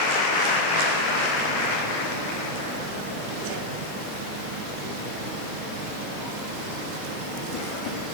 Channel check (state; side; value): noise; left; hiss, 29 dB below the sound